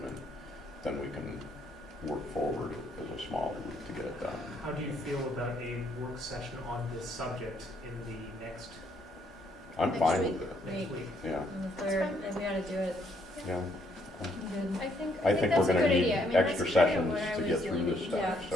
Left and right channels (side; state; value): both; normal; correlation 0.70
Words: then we can work forward as a smaller group to get it done. How do you feel about a work session on this subject in the next? I'm fine with it. Next week. Yeah. On the 3rd, and we ought to do it. Yeah. Good. I think I think that's we're a going to good need idea. I mean, extra that's kind of sessions what I to was get through doing. this stuff, Yeah.